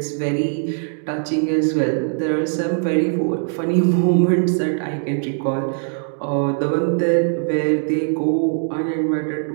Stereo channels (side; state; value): left; silent; digital silence